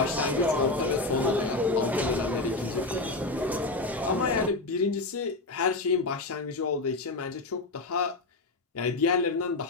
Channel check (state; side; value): quieter; right; 3.2 dB